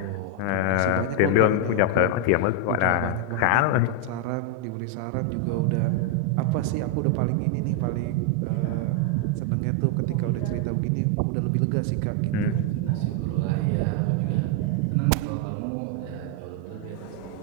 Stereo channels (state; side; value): different; both; correlation 0.00